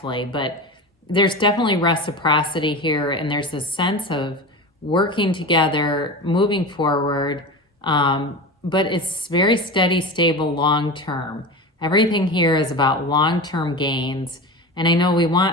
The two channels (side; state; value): both; normal; correlation 0.27